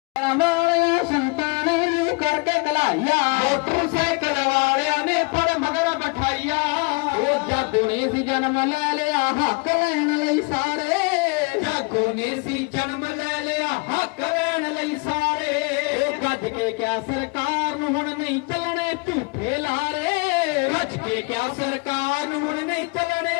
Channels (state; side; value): quieter; right; 30.7 dB